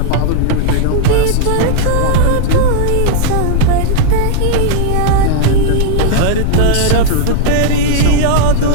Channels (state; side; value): different; both; correlation 0.00